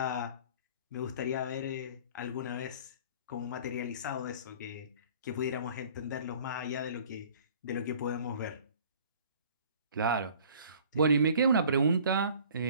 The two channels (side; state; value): both; inverted; correlation -0.50